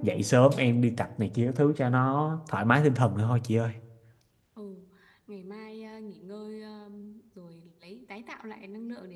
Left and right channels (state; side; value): identical; both; correlation 1.00